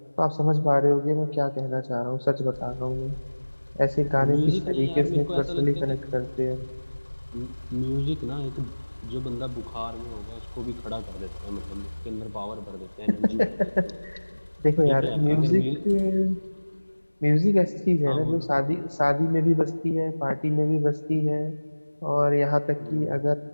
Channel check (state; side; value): inverted; both; correlation -1.00